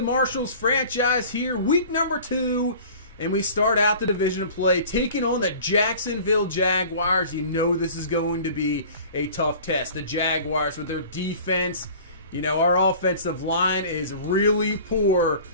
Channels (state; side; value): inverted; both; correlation -0.43